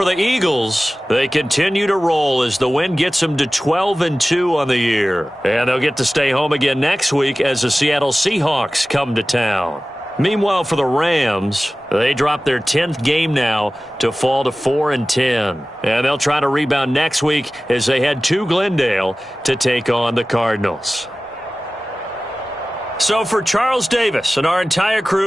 the Eagles, they continue to roll as the win gets them to 12-2 on the year. And they'll get to stay home again next week as the Seattle Seahawks come to town. Meanwhile, for the Rams, they drop their 10th game now to fall to 4-10. And they'll try to rebound next week as they head to Glendale to take on the Cardinals. So for Charles Davis and our entire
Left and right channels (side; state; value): both; normal; correlation 0.97